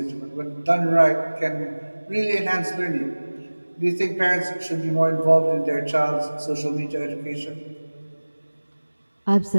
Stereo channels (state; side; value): inverted; both; correlation -1.00